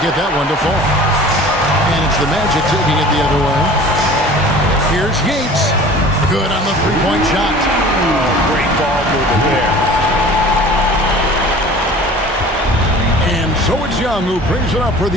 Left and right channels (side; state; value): both; normal; correlation 0.43